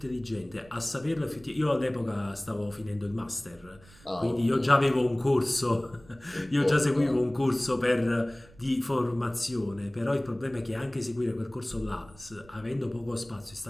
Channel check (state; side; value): noise; right; rumble, 24 dB below the sound